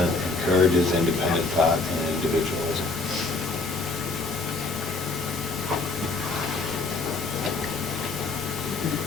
encourages independent thought and individualism?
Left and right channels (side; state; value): right; quieter; 3.6 dB